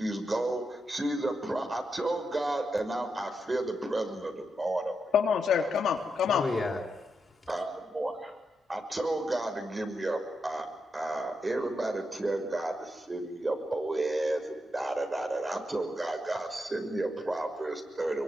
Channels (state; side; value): normal; both; correlation 0.84